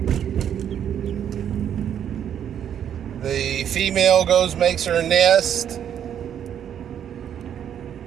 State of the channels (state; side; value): quieter; left; 9.3 dB